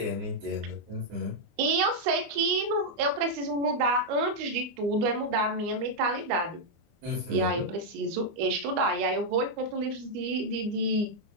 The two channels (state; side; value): late; left; 25 ms